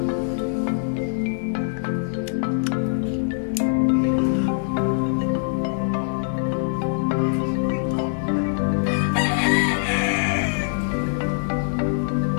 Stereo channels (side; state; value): right; silent; 59 dB below the other